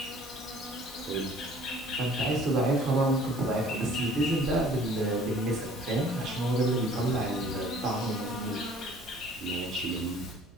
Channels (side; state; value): right; noise; hum, 25 dB below the sound